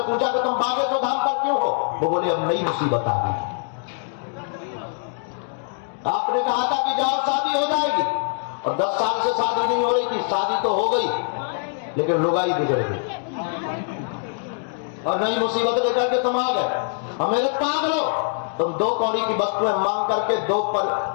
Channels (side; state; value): right; silent; 63 dB below the other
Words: पूछा कि तुम बागेश्वर धाम पर क्यों हो? वो बोले अब नई मुसीबत आ गई। आपने कहा था कि जाओ शादी हो जाएगी, और 10 साल से शादी नहीं हो रही थी, शादी तो हो गई लेकिन लुगाई बिगड़ गई और नई मुसीबत लेकर के तुम आ गए। और मेरे पागलो, तुम 2 कौड़ी की वस्तुएं मांग करके दो